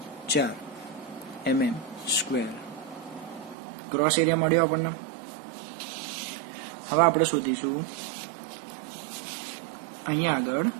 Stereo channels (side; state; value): left; drops out; at 3.6 s